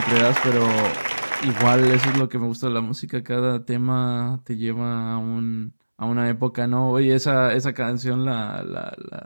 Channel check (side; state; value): both; inverted; correlation -1.00